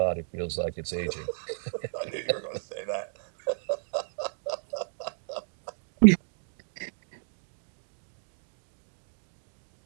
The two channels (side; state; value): left; silent; digital silence